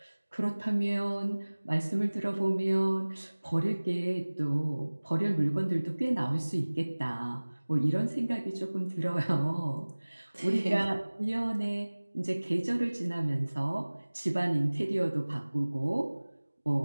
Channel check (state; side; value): inverted; both; correlation -1.00